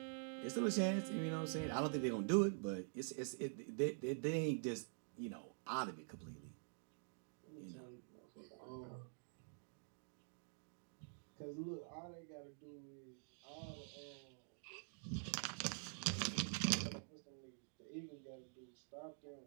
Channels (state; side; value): silent; left; digital silence